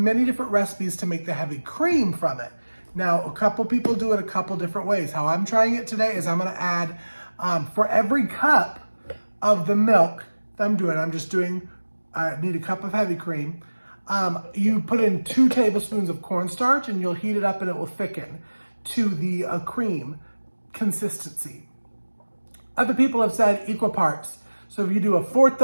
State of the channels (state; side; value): inverted; both; correlation -1.00